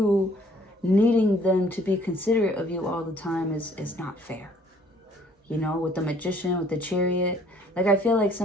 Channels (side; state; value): both; normal; correlation 0.59